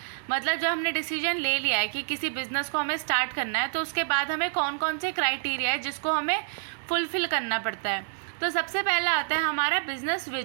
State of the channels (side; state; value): left; silent; digital silence